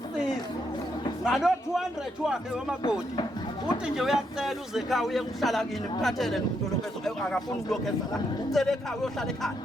ngalo 200 wakhe wamakoti uthi nje uyacela uze ekhaya uye kuhlala kini ukuphathele nomuntu lokho akafuni ukulokheza la ucela ekhaya uyohlala ekhaya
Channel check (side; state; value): both; normal; correlation 0.78